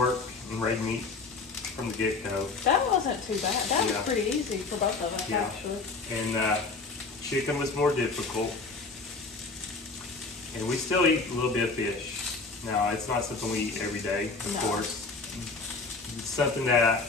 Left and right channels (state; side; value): quieter; right; 4.0 dB